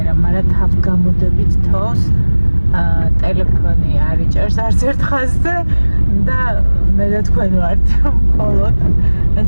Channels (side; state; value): both; inverted; correlation -1.00